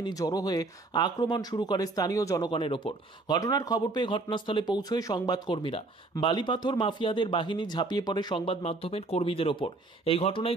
জড়ো হয়ে আক্রমণ শুরু করে স্থানীয় জনগণের ওপর। ঘটনার খবর পেয়ে ঘটনাস্থলে পৌঁছয় সংবাদকর্মীরা। বালিপাথর মাফিয়াদের বাহিনী ঝাঁপিয়ে পড়ে সংবাদ মাধ্যমের কর্মীদের ওপর। এই ঘটনায়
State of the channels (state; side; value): quieter; left; 3.2 dB